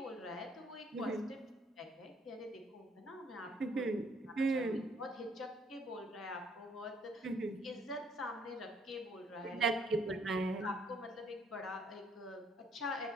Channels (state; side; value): normal; both; correlation 0.64